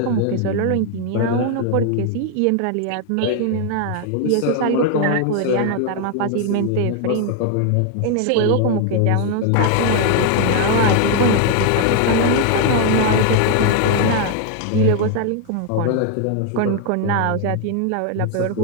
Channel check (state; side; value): different; both; correlation 0.00